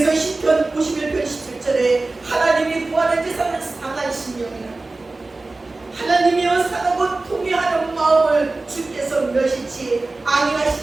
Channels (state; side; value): quieter; left; 3.3 dB